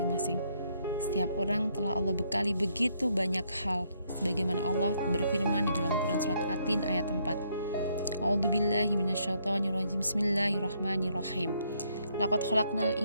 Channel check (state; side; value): inverted; both; correlation -0.72